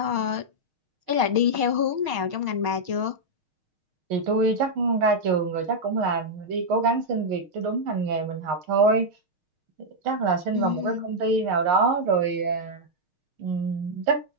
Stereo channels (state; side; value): late; left; 6.4 ms